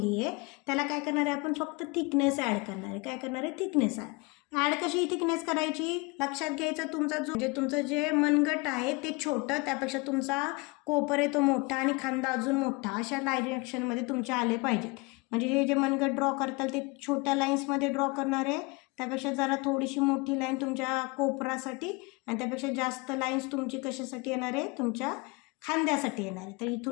आहे त्याला काय करणार आहे आपण फक्त थिकनेस ॲड करणार आहे. काय करणार आहे? थिकनेस ॲड कशी थिकनेस करायची लक्षात घ्यायचं. तुमचं जे मनगट आहे ते छोटं, त्यापेक्षा तुमचा कोपर आहे तो मोठा आणि खांदा अजून मोठा, अशा डायरेक्शनमध्ये तुमचे आले पाहिजेत. म्हणजे हे जे मनगट ड्रॉ करताल ते छोट्या लाईन्समध्ये ड्रॉ करणार आहे, त्यापेक्षा जरा थोडीशी मोठी लाईन तुमच्या कोपरासाठी आणि त्यापेक्षा जास्त लाईन्स तुमची कशासाठी येणार आहे? तुमच्या खांद्यासाठी येणार आहे. तर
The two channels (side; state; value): right; quieter; 26.9 dB